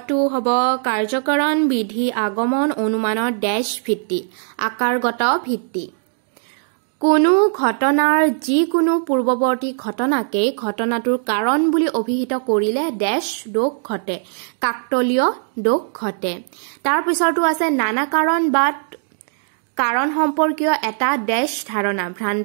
হ'ব কাৰ্যকাৰণ বিধি আগমন অনুমানৰ ড্যাশ ভিত্তি আকাৰগত ভিত্তি কোনো ঘটনাৰ যিকোনো পূৰ্বৱৰ্তী ঘটনাকে ঘটনাটোৰ কাৰণ বুলি অভিহিত কৰিলে ড্যাশ দোষ ঘটে কাকতলীয় দোষ ঘটে তাৰ পিছৰটো আছে নানা কাৰণ বা কাৰণ সম্পৰ্কীয় এটা ড্যাশ ধাৰণা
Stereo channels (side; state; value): left; silent; 62 dB below the other